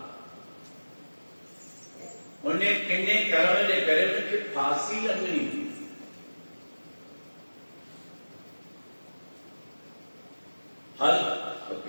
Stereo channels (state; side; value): inverted; both; correlation -1.00